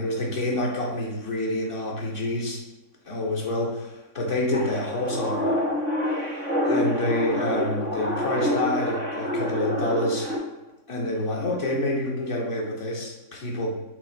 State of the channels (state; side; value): late; left; 3.6 ms